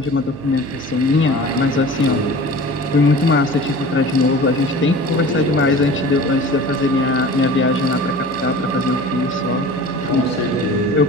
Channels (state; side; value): noise; right; hum, 15 dB below the sound